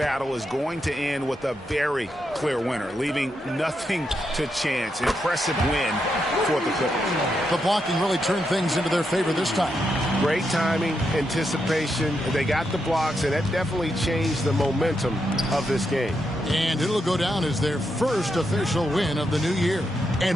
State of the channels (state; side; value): normal; both; correlation 0.83